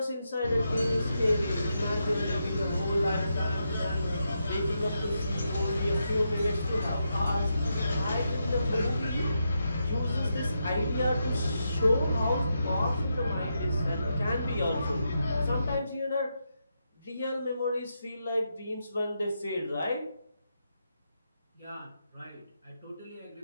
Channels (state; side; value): inverted; both; correlation -0.84